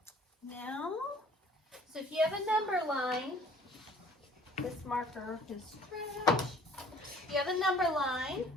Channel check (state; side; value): normal; both; correlation 0.54